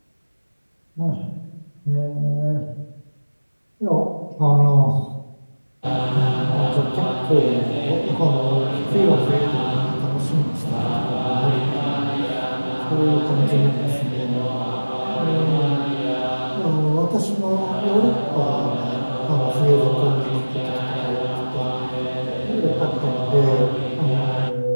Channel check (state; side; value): inverted; both; correlation -1.00